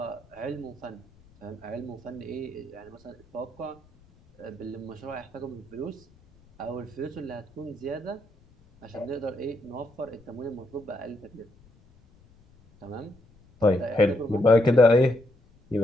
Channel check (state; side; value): noise; left; rumble, 28 dB below the sound